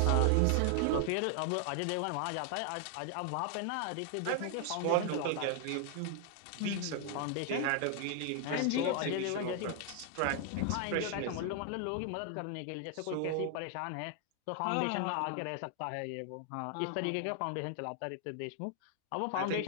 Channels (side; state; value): both; different; correlation 0.00